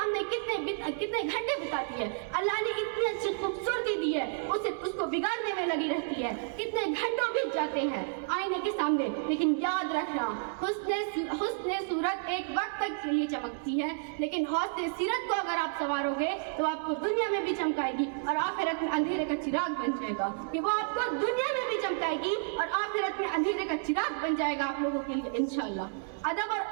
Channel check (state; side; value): silent; left; 57 dB below the other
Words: کتنے گھنٹے بتاتی ہے. اللہ نے اتنی اچھی خوبصورتی دی ہے، اس کو بگاڑنے میں لگی رہتی ہے، کتنے گھنٹوں بیت جاتے ہیں آئینے کے سامنے. لیکن یاد رکھنا، حسن صورت ایک وقت تک کے لیے چمکتی ہے، لیکن حسن سیرت کو اگر آپ سنوارو گے تو آپ کو دنیا میں بھی چمکائے گی اور آخرت میں اندھیرے کا چراغ بن جائے گا. کہ وہ آپ کو دنیا میں بھی چمکائے گی اور آخرت میں اندھیرے کا چراغ بن جائے گا آپ لوگوں کے لیے انشاءاللہ. ادب اور